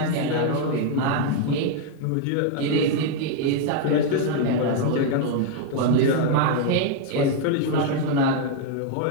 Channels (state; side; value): different; both; correlation 0.00